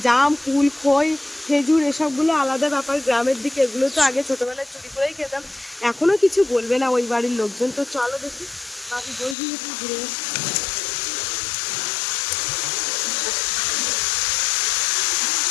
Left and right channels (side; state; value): right; drops out; at 9.3 s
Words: জাম কুল খই খেজুর এসবগুলো আলাদা ব্যাপার, গ্রামের দিকে এগুলো তো আগে ছোটবেলায় চুরি করেই খেতাম। এখনো কিছু বলবে না ওই বাড়ির লোকজন। তো চলো দেখি বাকি বই দিয়ে একটু ঘুরে আসি।